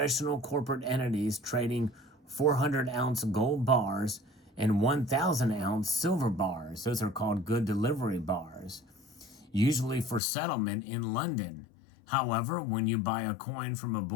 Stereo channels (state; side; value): drops out; right; at 10.2 s